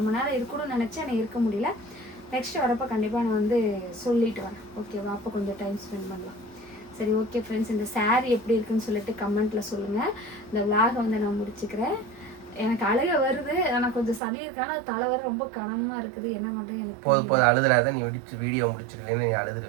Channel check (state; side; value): drops out; left; at 14.2 s